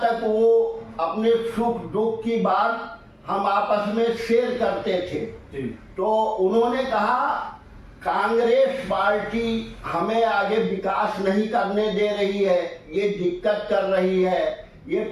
तक वो अपने सुख दुख की बात हम आपस में शेयर करते थे। तो उन्होंने कहा, कांग्रेस पार्टी हमें आगे विकास नहीं करने दे रही है, ये दिक्कत कर रही है, ये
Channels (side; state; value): both; identical; correlation 1.00